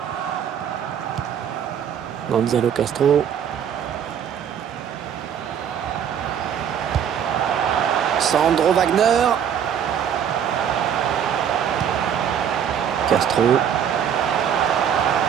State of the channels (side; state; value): left; quieter; 8.6 dB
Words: Gonzalo Castro. Sandro Wagner. Castro.